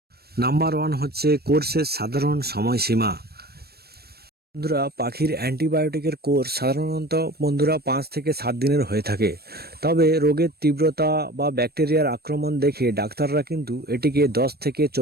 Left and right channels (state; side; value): late; left; 0.46 ms